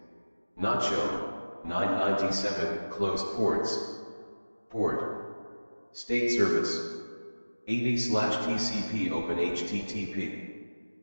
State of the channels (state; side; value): inverted; both; correlation -1.00